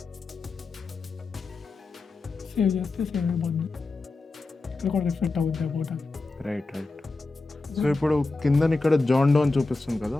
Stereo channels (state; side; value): quieter; right; 3.4 dB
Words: సేవ్ చేస్తే సేవ్ అయిపోద్ది, ఇక్కడ కూడా రిఫ్లెక్ట్ అవుద్ది అబౌట్ అది. రైట్. సో ఇప్పుడు కింద ఇక్కడ జాండో అని చూపిస్తుంది కదా,